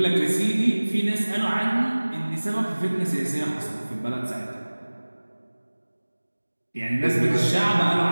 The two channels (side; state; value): both; inverted; correlation -1.00